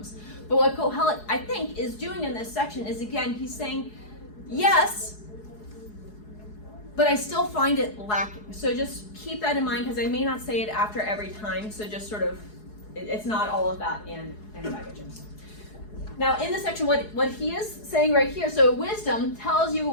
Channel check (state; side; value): late; right; 4.7 ms